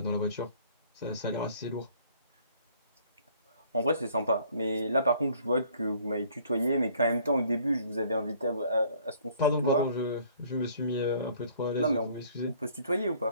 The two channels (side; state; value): both; inverted; correlation -0.58